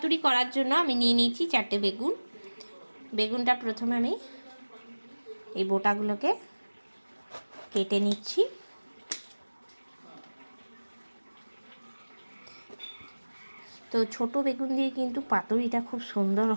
করার জন্য আমি নিয়ে নিয়েছি 4টে বেগুন। বেগুনটা প্রথমে আমি এই বোটাগুলোকে কেটে নিচ্ছি। তো ছোট বেগুন দিয়ে কিন্তু পাতুরিটা খুব সুন্দর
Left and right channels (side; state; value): both; inverted; correlation -1.00